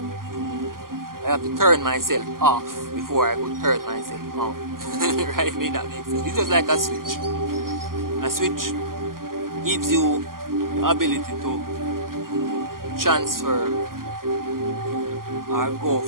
I have to turn myself off before I could turn myself on. Right? May that make sense? It's just like a switch. A switch gives you the ability to transfer or go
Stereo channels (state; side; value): late; left; 0.91 ms